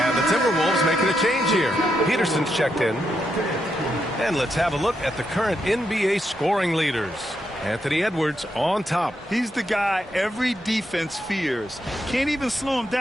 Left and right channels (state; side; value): normal; both; correlation 0.82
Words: Timberwolves making a change here. Peterson's checked in. And let's have a look at the current NBA scoring leaders. Anthony Edwards on top. He's the guy every defense fears. Can't even slow him